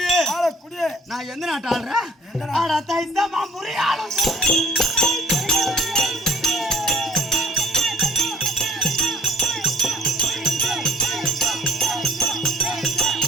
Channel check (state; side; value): normal; both; correlation 0.56